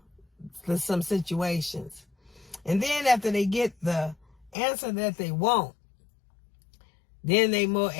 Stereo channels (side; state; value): right; drops out; at 4.5 s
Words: some situations. And then after they get the answer that they want, then they more